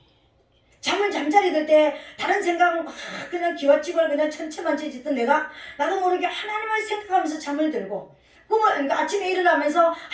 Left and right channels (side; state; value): both; identical; correlation 1.00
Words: 잠자리 들 때 다른 생각 막 그냥 기와집을 그냥 천체만체 짓던 내가 나도 모르게 하나님을 생각하면서 잠을 들고, 그러니까 아침에 일어나면서